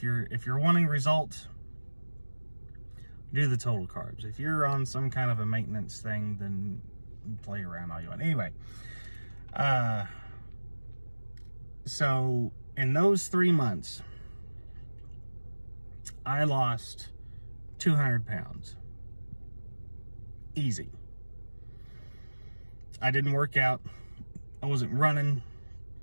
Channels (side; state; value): both; inverted; correlation -1.00